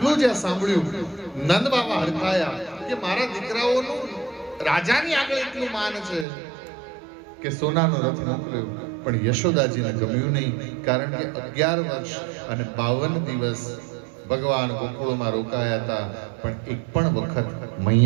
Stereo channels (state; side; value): drops out; left; at 6.2 s